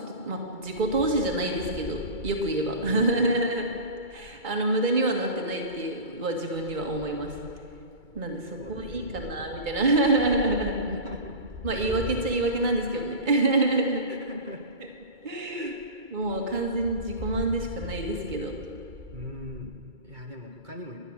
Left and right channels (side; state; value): left; late; 2.3 ms